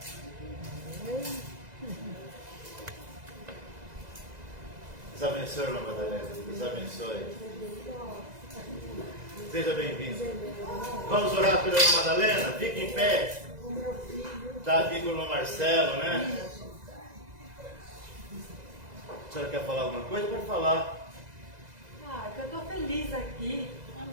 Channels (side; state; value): left; late; 2.0 ms